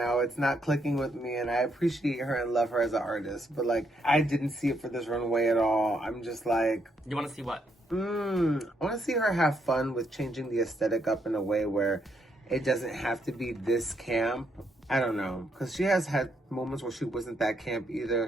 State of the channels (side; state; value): both; normal; correlation 0.75